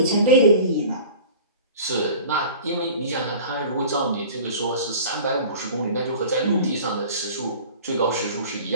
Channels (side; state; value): both; inverted; correlation -0.41